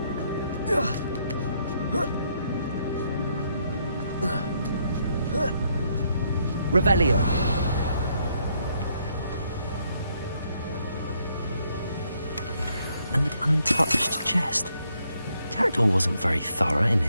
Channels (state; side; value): inverted; both; correlation -0.73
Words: Revelio. An untouched chest. Jackdaw wasn't very thorough in